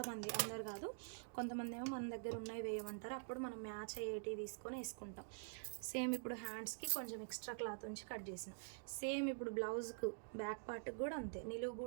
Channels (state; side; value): silent; left; digital silence